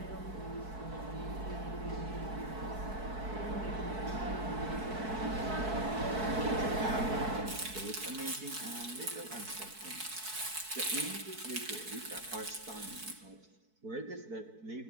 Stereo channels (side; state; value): left; late; 4.6 ms